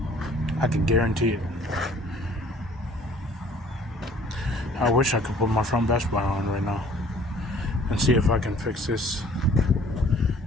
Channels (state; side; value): normal; both; correlation 0.55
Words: I can guarantee it. I wish I could put my front dash bar on right now and see if I can fix this